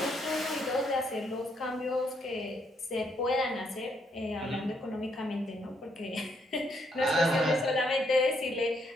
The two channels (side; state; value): both; normal; correlation 0.74